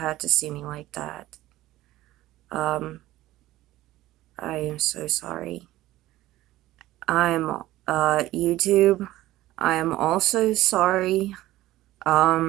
to see me like that. Um, I am so sorry. I'm, YouTube, I am also sorry.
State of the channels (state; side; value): quieter; left; 16.1 dB